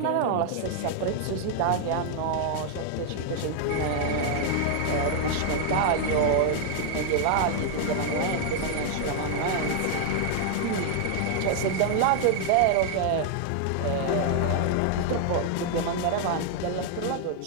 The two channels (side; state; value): both; different; correlation 0.00